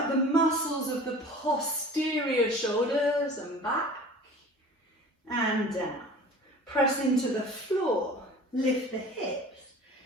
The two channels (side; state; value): both; normal; correlation 0.42